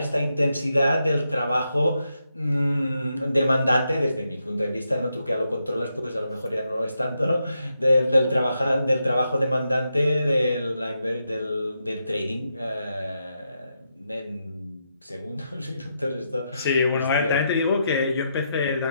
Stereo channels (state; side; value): inverted; both; correlation -0.83